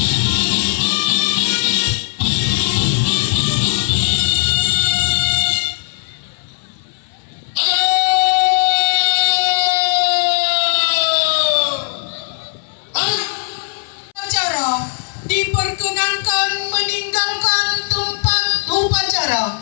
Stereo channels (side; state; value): right; silent; 68 dB below the other